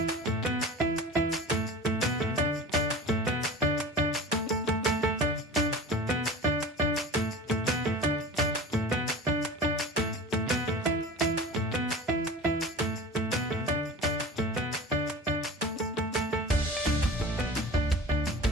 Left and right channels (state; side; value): normal; both; correlation 0.36